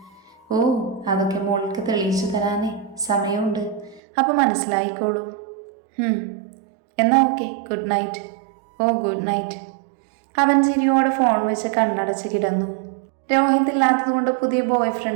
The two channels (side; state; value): left; drops out; at 4.0 s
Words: അതൊക്കെ മോൾക്ക് തെളിയിച്ചു തരാനേ സമയമുണ്ട്. അപ്പം മനസ്സിലായിക്കോളും. എന്നാ okay, good night. Good night. അവൻ ചിരിയോടെ ഫോൺ വെച്ച് കണ്ണടച്ച് കിടന്നു. രോഹിത് ഇല്ലാത്തതുകൊണ്ട് പുതിയ ബോയ്